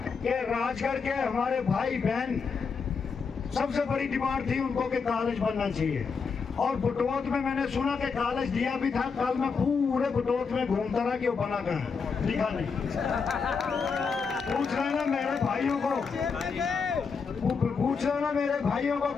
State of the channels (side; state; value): right; quieter; 5.4 dB